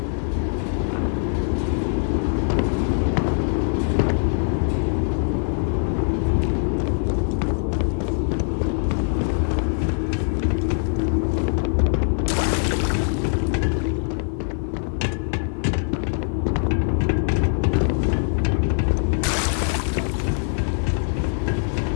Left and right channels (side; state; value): right; silent; 64 dB below the other